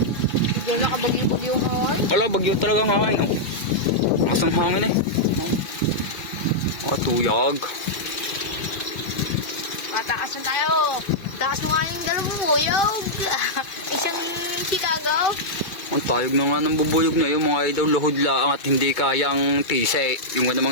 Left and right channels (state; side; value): late; right; 2.3 ms